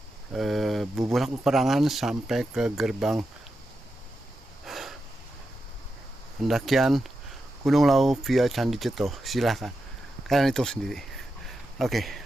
Bubulak Peperangan sampai ke gerbang pendakian Gunung Lawu via Candi Ceto. Silahkan kalian hitung sendiri. Oke,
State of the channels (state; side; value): normal; both; correlation 0.88